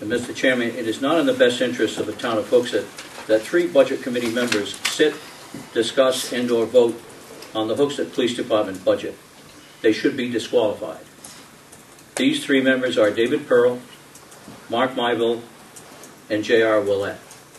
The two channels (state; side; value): identical; both; correlation 1.00